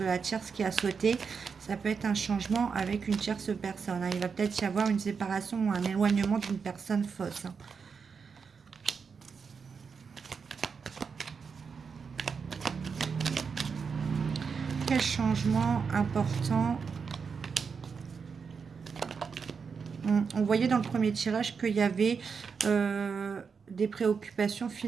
la tierce qui a sauté. Ça peut être un changement avec une tierce personne. Hein. Il va peut-être y avoir une séparation ou un éloignement d'une personne fausse. Hein. Quel changement important? On voyait dans le premier tirage qu'il y avait des préoccupations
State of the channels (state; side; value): quieter; left; 5.7 dB